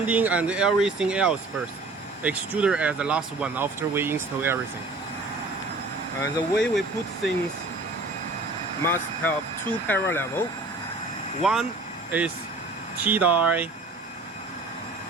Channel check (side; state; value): left; quieter; 3.3 dB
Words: and everything else first. Extruder as the last one after we install everything. And the way we put things must have two parallel level. One is T-die